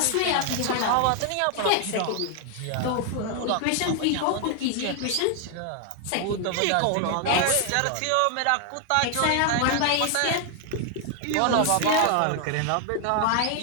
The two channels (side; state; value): both; different; correlation 0.00